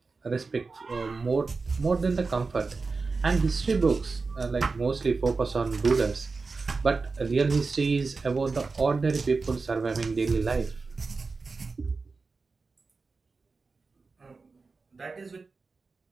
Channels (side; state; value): left; quieter; 4.2 dB